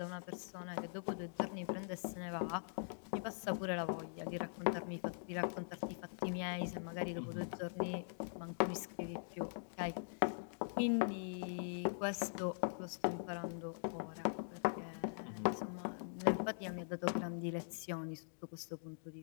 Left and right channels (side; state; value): right; silent; digital silence